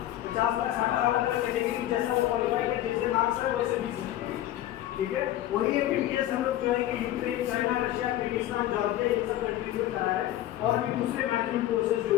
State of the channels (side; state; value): right; quieter; 13.5 dB